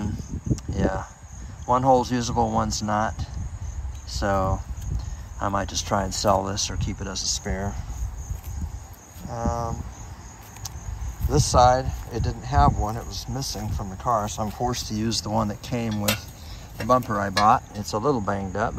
yeah, one hole's usable, one's not, so I might just try and sell this or keep it as a spare. This side, it didn't have one, it was missing from the car, so I'm forced to use the one that came with the bumper I bought. It's a little banged up,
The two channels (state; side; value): identical; both; correlation 1.00